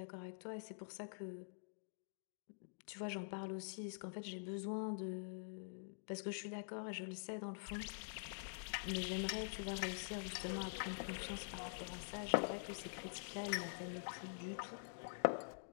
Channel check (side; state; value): right; silent; digital silence